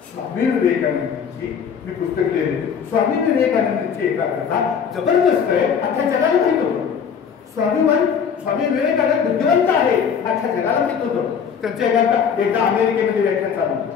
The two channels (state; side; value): quieter; right; 7.1 dB